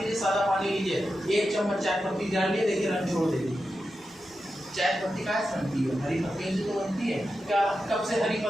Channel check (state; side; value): normal; both; correlation 0.90